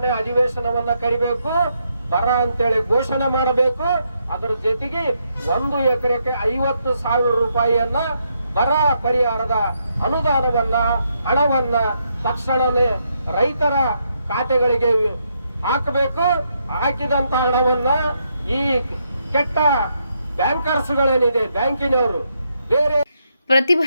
ಅಧಿವೇಶನವನ್ನ ಕರಿಬೇಕು, ಬರ ಅಂತೇಳಿ ಘೋಷಣೆ ಮಾಡಬೇಕು. ಅದರ ಜೊತೆಗೆ 1 ಎಕರೆಗೆ 50,000 ರೂಪಾಯಿಯನ್ನ ಬರ ಪರಿಹಾರದ ಅನುದಾನವನ್ನ ಹಣವನ್ನ ತಕ್ಷಣನೇ ರೈತರ ಖಾತೆಗಳಿಗೆ ಹಾಕಬೇಕು. ಹಾಕಿದಂತ ಹಣವನ್ನ ಈ ಕೆಟ್ಟ ಬ್ಯಾಂಕರ್ಸ್ಗಳೇನಿದೆ, ಬ್ಯಾಂಕಿನವರು ಬೇರೆ.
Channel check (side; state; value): both; inverted; correlation -0.78